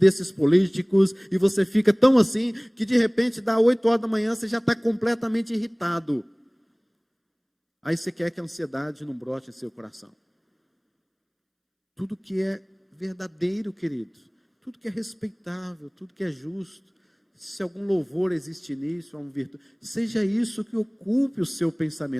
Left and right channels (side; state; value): both; identical; correlation 1.00